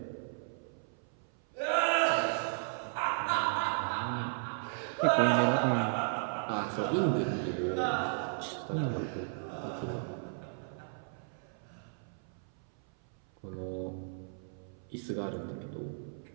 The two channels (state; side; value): silent; left; 55 dB below the other